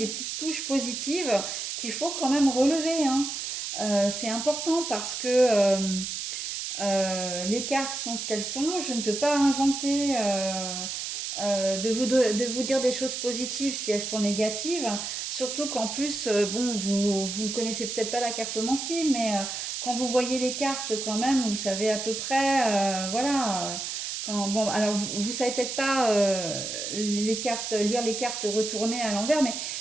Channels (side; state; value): right; noise; hiss, 4 dB below the sound